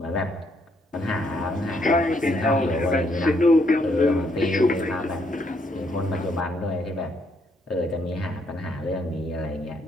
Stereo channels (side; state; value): both; normal; correlation 0.72